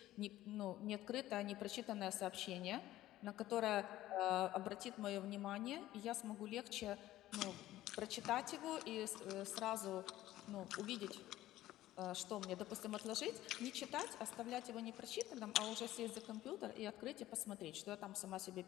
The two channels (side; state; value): right; quieter; 14.9 dB